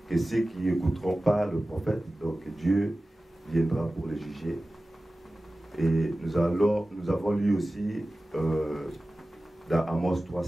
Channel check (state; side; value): normal; both; correlation 0.96